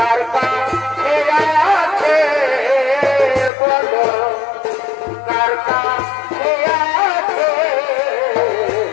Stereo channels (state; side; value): drops out; right; at 3.5 s